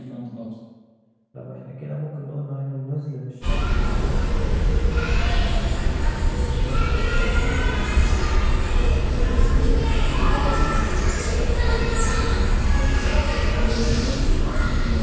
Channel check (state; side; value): identical; both; correlation 1.00